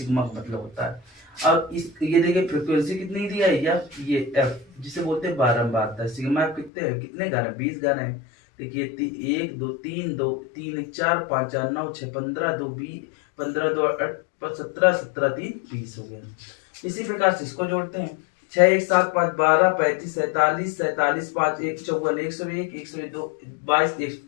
का मतलब होता है। और ये देखिए फ्रीक्वेंसी कितनी दिया है, ये एफ जिसे बोलते हैं बारंबारता। सिग्मा एफ कितने घर है, 20 घर है। देखिए 1 2 3 2 3 1 4 5 4 9 6 15 2 20 15 2 17 17 3 20 हो गया। इसी प्रकार से इसको जोड़ते हैं, 6 1 7 5 12 35 47 47 5 1 54 101 102 22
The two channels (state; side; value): drops out; right; at 6.7 s